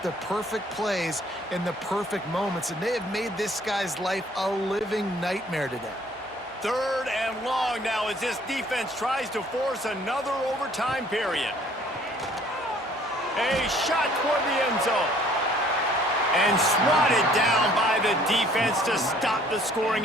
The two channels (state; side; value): normal; both; correlation 0.58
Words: the perfect plays in the perfect moments, and they have made this guy's life a living nightmare today. Third and long now as this defense tries to force another overtime period. A shot toward the end zone. And swatted down by the defense to stop the